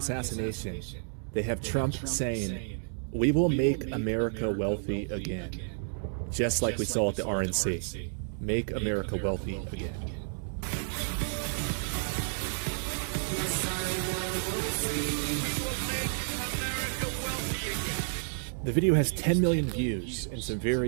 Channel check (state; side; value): silent; left; digital silence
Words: they have Trump saying, "We will make America wealthy again." Just like we saw at the RNC. Make America wealthy again. The video has 10 million views and some